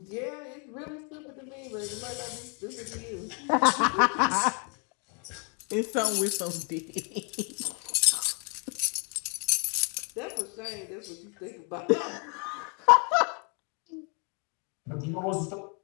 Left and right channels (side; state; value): right; quieter; 37.0 dB